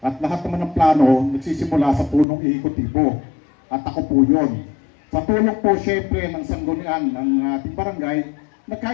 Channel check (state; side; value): drops out; right; at 2.2 s